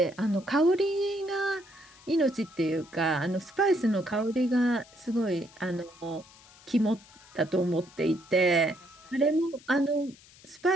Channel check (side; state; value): left; noise; hiss, 24 dB below the sound